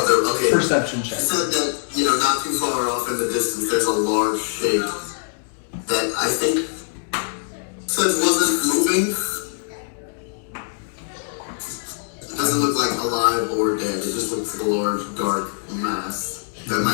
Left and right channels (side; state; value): right; silent; 64 dB below the other